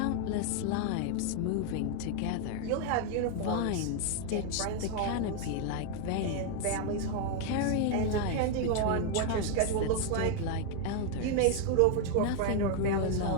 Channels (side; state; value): both; different; correlation 0.00